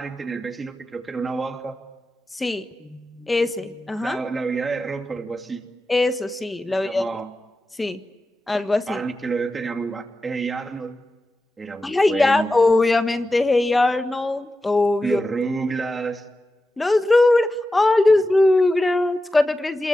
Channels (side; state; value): both; normal; correlation 0.92